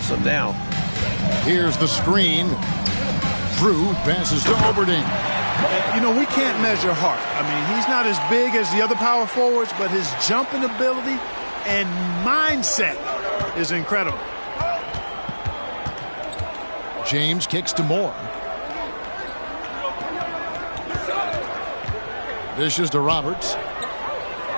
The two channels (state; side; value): inverted; both; correlation -1.00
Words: them now. Here's the screen. Drew passes to Oberding. You know, we can't measure Hart. I mean, he's not as big as the other power forwards, but his jumping ability and mindset is incredible. James kicks to Moore. Dishes to Roberts.